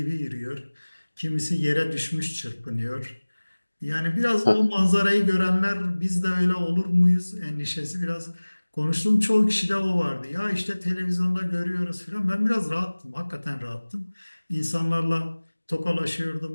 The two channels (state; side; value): inverted; both; correlation -1.00